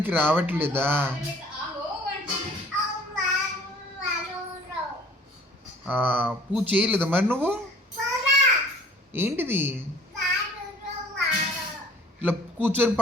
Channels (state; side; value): normal; both; correlation 0.52